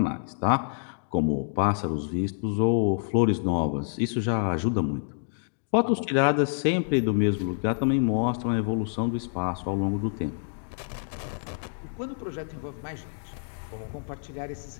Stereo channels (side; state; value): right; silent; digital silence